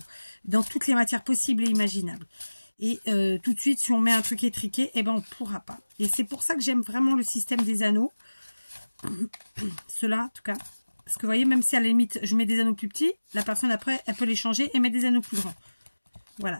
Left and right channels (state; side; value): inverted; both; correlation -1.00